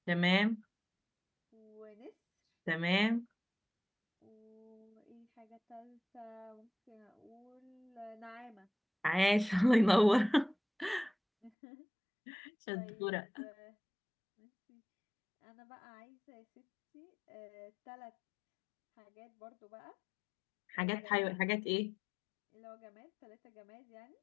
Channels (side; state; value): right; drops out; at 11.5 s